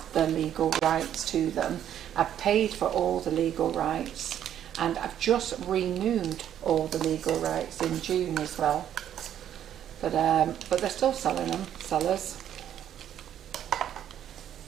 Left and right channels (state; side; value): quieter; left; 10.4 dB